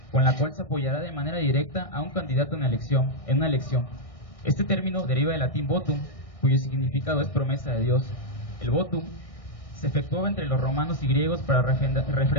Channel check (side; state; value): right; late; 1.6 ms